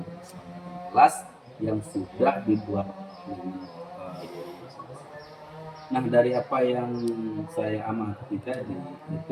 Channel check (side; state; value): both; identical; correlation 1.00